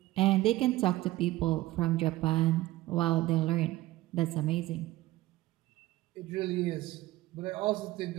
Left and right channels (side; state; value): left; quieter; 17.4 dB